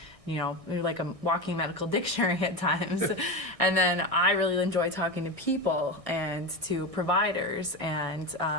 you know, you're like a walking medical dictionary at times. And then I really enjoy talking to people and to providers, and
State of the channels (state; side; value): late; left; 1.6 ms